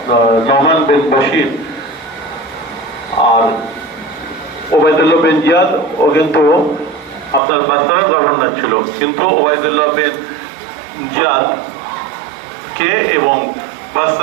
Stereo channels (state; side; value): drops out; left; at 7.4 s